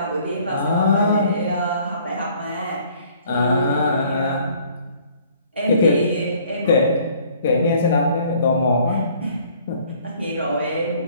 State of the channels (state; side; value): inverted; both; correlation -0.58